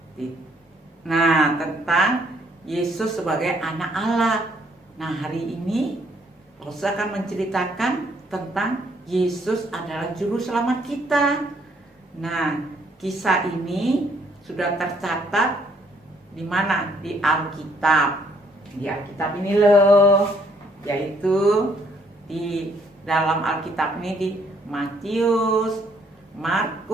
Nah, tentang Yesus sebagai anak Allah. Nah, hari ini Lose akan menceritakan tentang Yesus adalah juru selamat kita. Nah, kisah ini sudah tercatat di mana? Di Alkitab. Di Alkitab ini loh, yaitu di dalam Alkitab ini di Matius,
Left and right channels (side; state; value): both; normal; correlation 0.67